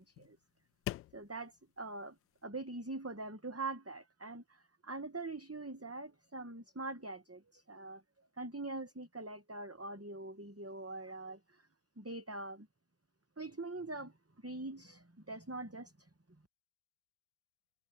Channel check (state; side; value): normal; both; correlation -0.14